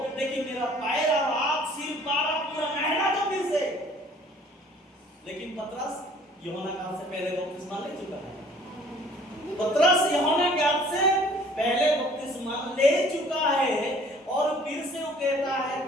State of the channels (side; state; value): both; normal; correlation 0.54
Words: लेकिन मेरा पैर और आंख सिर पूरा नहला दो फिर से। लेकिन पतरस यूहन्ना के हाथ से पहले बपतिस्मा ले चुका है। पतरस यूहन्ना के हाथ से पहले बपतिस्मा ले चुका है। और फिर से वो कहता है,